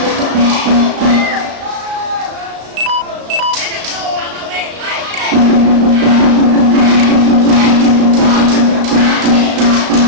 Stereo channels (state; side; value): late; left; 35 ms